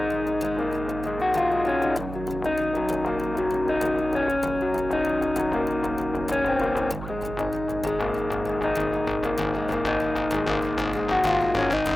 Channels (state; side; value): noise; right; hum, 10 dB below the sound